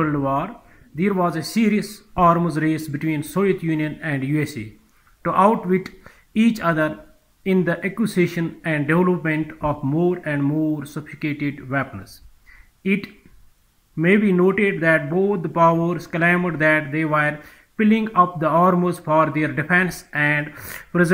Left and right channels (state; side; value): identical; both; correlation 1.00